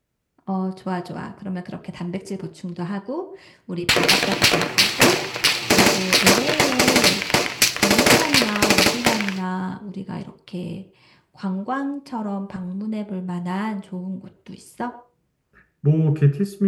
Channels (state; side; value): identical; both; correlation 1.00